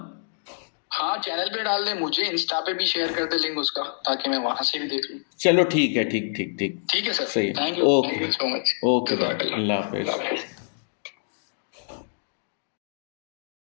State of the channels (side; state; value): right; silent; digital silence